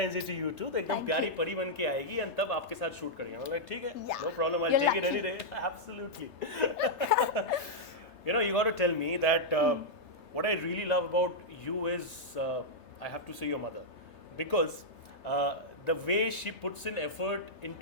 Day to you too. तो एकदम Thank प्यारी you। परी बन के आएगी एंड तब आपके साथ शूट करेंगे। मैं ठीक है, Yeah, no problem, I you're take it lucky। Any day, absolutely. You know, you got to tell me that what I really love about you is I have to say your mother, because the way she puts in effort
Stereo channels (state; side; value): late; right; 3.3 ms